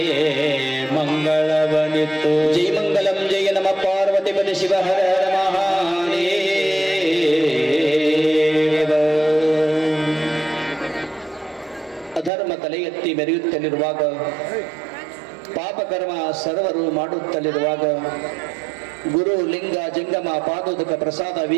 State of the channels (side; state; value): left; drops out; at 12.3 s